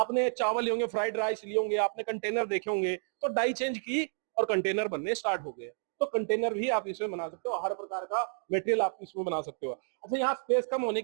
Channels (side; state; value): left; silent; digital silence